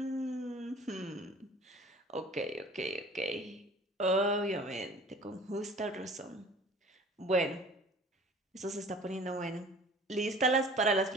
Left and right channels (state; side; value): normal; both; correlation 0.46